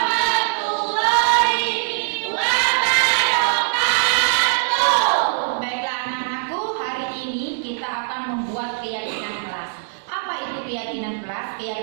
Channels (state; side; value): silent; left; digital silence